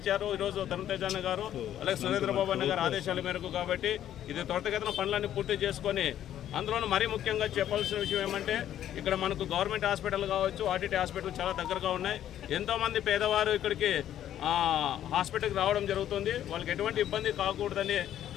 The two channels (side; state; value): right; quieter; 11.3 dB